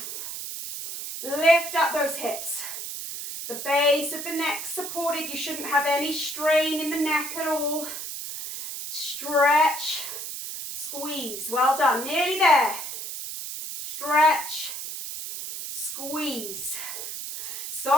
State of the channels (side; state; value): right; noise; hiss, 7 dB below the sound